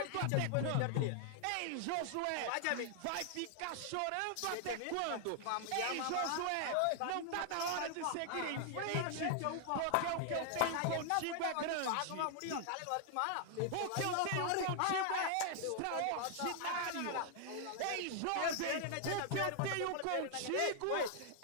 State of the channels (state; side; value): different; both; correlation 0.00